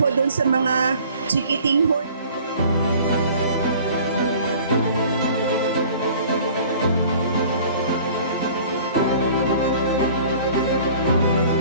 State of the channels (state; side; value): inverted; both; correlation -0.49